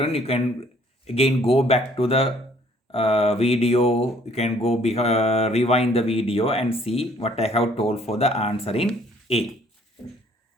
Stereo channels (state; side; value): normal; both; correlation 0.60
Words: you can again go back to the video. You can go rewind the video and see what I have told for the answer in A.